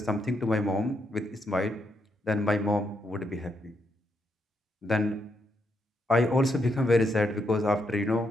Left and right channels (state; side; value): normal; both; correlation 0.79